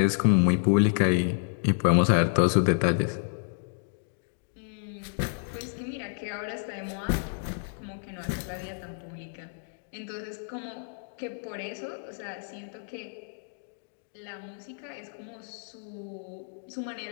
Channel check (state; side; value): silent; right; digital silence